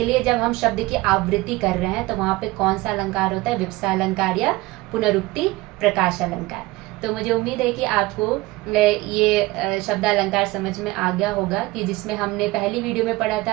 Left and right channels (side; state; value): left; quieter; 20.5 dB